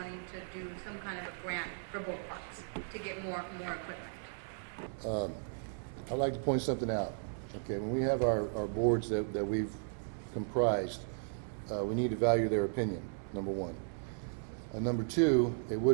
to do some kind of a grant for both parks to get more equipment. I'd like to point something out. Okay, when we have our boards that we've comprised, we need to value their opinion, number one. Number two, it would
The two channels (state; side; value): silent; left; 54 dB below the other